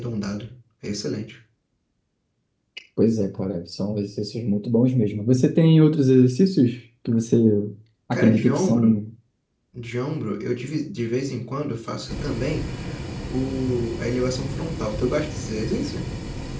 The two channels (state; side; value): identical; both; correlation 1.00